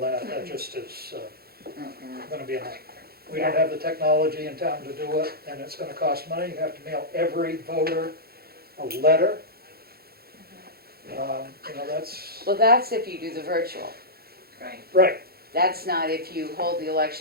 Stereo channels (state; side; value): late; left; 0.45 ms